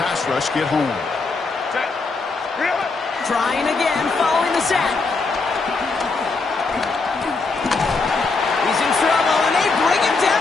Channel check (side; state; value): right; quieter; 4.0 dB